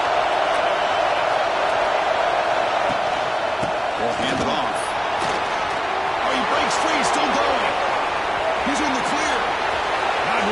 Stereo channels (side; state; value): both; identical; correlation 1.00